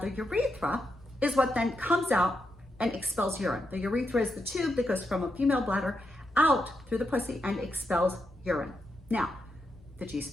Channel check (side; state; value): both; normal; correlation 0.83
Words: urethra is what then comes out and expels urine. The urethra is the tube that goes from a female bladder out through the pussy and expels urine. Now, the G